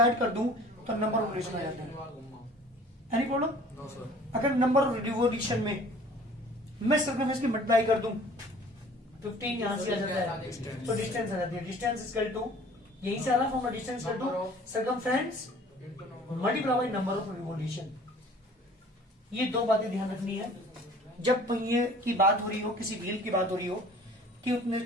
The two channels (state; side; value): normal; both; correlation 0.49